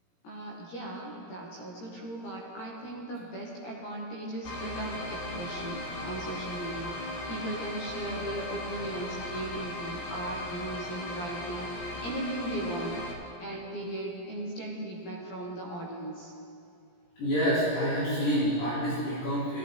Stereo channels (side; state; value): right; late; 17 ms